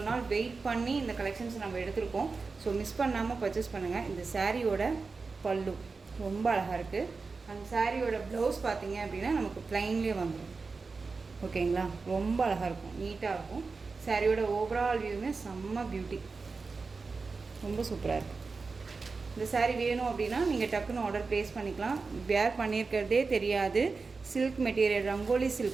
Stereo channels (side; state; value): left; quieter; 4.3 dB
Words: நாள் வெயிட் பண்ணி இந்த கலெக்ஷன்ஸ் நம்ம எடுத்திருக்கோம். ஸோ மிஸ் பண்ணாமல் பர்ச்சேஸ் பண்ணுங்கள். இந்த சாரியோட பல்லு ரொம்ப அழகாக இருக்குது. அந்த சாரியோட ப்ளவுஸ் பார்த்தீங்க அப்படின்னா நமக்கு ப்ளைன்லேயே வந்துடும். ஓகேங்களா, ரொம்ப அழகாக இருக்கும், நீட்டாக இருக்கும். சாரியோட ஓவரால் வியூவுமே செம்ம பியூட்டி, ரொம்ப சூப்பராக இருக்குது. இந்த சாரீ வேணும் அப்படின்னா நீங்கள் டக்குன்னு ஆர்டர் ப்ளேஸ் பண்ணிக்கலாம். வேர் பண்ணியிருக்கிறதே தெரியாது. சில்க் மெட்டீரியல், ரங்கோலி